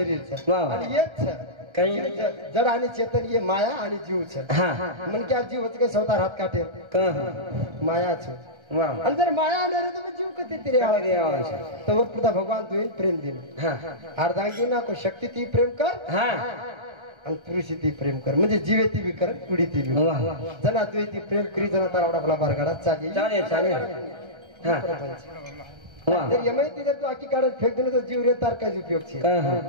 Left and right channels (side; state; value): left; late; 1.3 ms